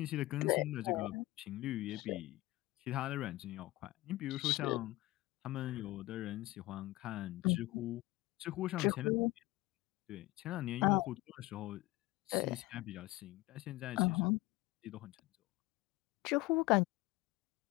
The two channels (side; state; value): right; quieter; 19.0 dB